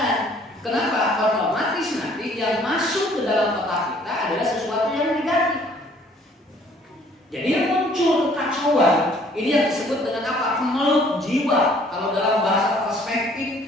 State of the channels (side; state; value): both; normal; correlation 0.59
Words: Kenapa? Otomatis nanti yang masuk ke dalam otak kita adalah sesuatu yang negatif. Jadi yang muncul kekacauan ini yang disebut dengan apa? Kemelut jiwa. Kalau dalam bahasa